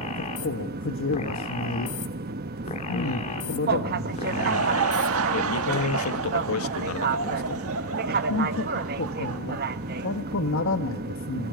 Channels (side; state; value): both; normal; correlation -0.05